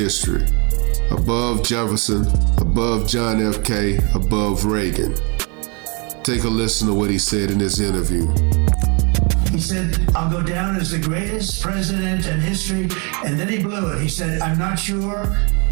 Above Jefferson, above John F. K., above Reagan. Take a listen to what he said in this interview. He said, I'll go down as the greatest president in history. And then he blew it. He said, I'm not sure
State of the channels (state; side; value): quieter; left; 33.6 dB